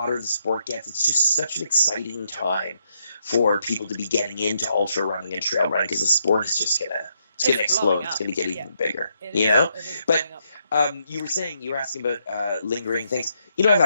the sport gets, it's just such an exciting time for people to be getting into ultra running and trail running, because the sport is just going to explode. It's going to get even bigger, But you were asking about lingering things. I've had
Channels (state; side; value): inverted; both; correlation -0.77